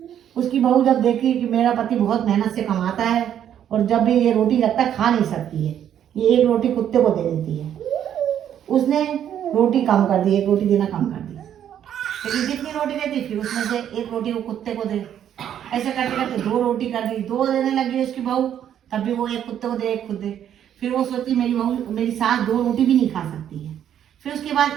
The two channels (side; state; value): left; quieter; 10.0 dB